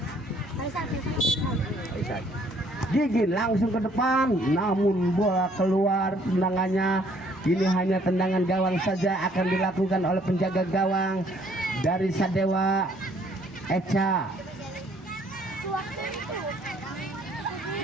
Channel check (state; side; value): normal; both; correlation 0.63